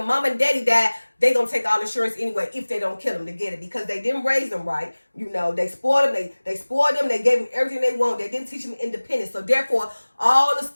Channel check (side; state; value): both; inverted; correlation -1.00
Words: mom and daddy die, they gonna take all insurance anyway if they don't kill them to get it, because they didn't raise them right. They spoiled them. They spoiled them. They gave them everything they want. They didn't teach them independence. So therefore, all the